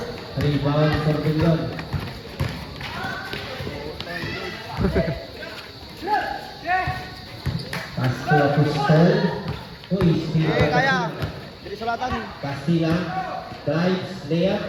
Rebound for Pilion. Pass to Apostol. Uy, Kaya. Dili sulatan. Castilla. Drives,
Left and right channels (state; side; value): identical; both; correlation 1.00